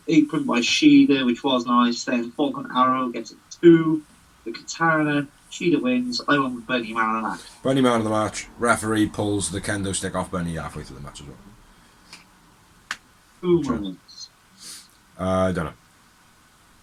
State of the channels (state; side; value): identical; both; correlation 1.00